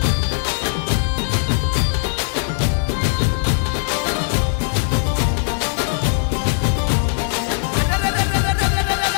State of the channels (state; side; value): silent; right; 66 dB below the other